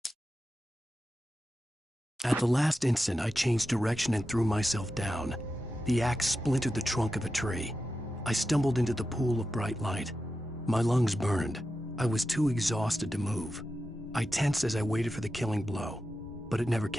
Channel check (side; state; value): both; normal; correlation 0.90